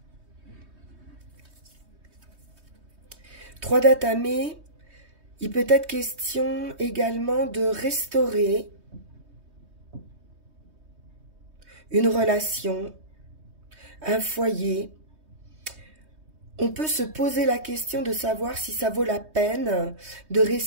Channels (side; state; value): left; late; 3.2 ms